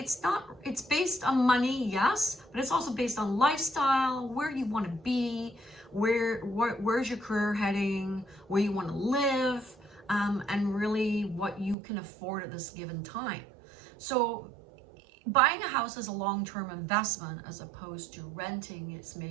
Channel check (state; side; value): drops out; left; at 11.8 s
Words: based on money, yes, but it's also based on lifestyle, where you want to be, where's your career heading, where you want to live, and really what you can afford at this given time. So buying a house is a long-term investment as opposed to renting. It's